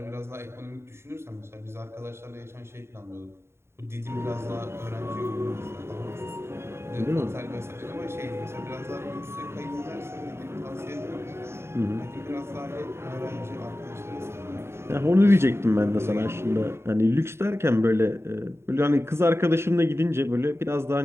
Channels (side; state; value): left; late; 0.12 ms